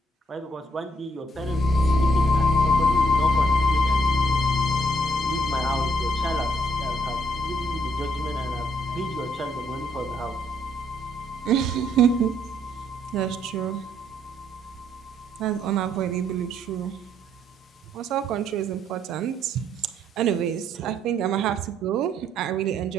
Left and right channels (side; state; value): both; normal; correlation 0.69